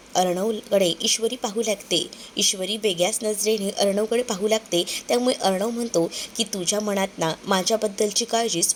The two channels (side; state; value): both; identical; correlation 1.00